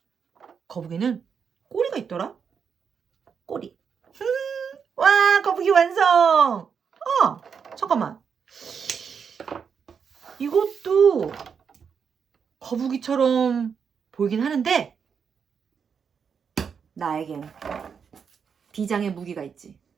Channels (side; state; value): left; quieter; 6.6 dB